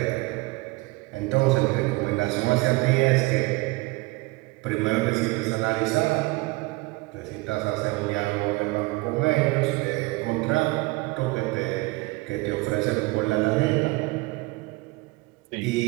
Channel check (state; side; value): quieter; left; 23.3 dB